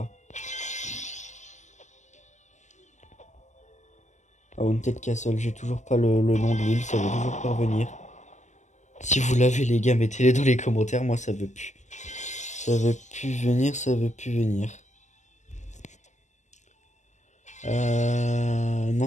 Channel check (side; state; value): right; late; 0.34 ms